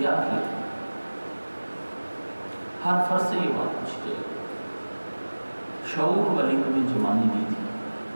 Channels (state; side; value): inverted; both; correlation -1.00